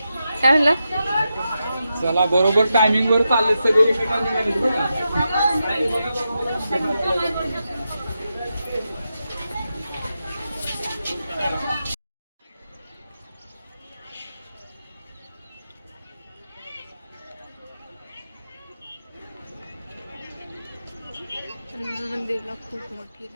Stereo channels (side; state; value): both; inverted; correlation -0.88